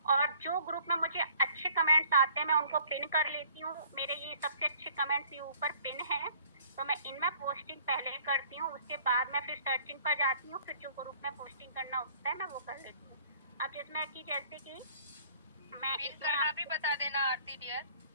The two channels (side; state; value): both; inverted; correlation -0.55